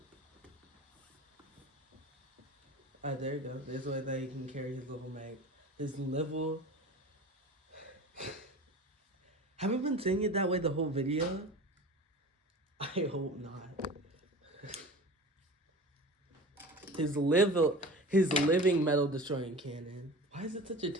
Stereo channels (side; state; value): both; normal; correlation 0.37